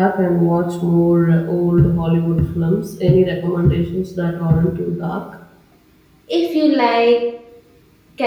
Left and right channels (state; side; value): identical; both; correlation 1.00